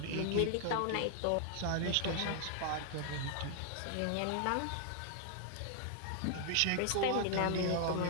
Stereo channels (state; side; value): different; both; correlation 0.00